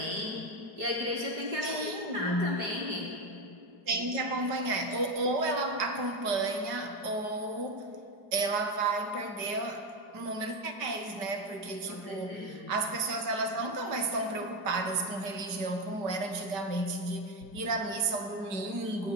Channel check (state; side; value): late; left; 5.2 ms